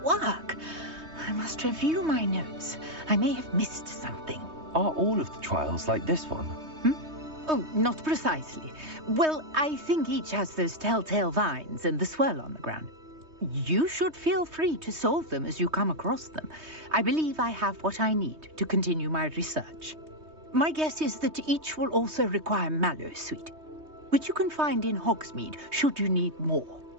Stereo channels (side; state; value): left; late; 3.2 ms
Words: work? I must review my notes. I may have missed something. Are all of the trials like this one? Oh, not precisely. Well, I think each has those telltale vines and the swirl on the ground. You should feel free to solve them as you come across them. I believe I have what I need to continue my research. My guess is that each will also require mallow sweet, which you can find in Hogsmeade should you need more.